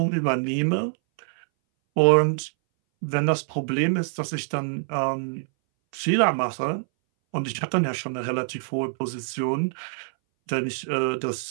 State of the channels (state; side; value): silent; left; 60 dB below the other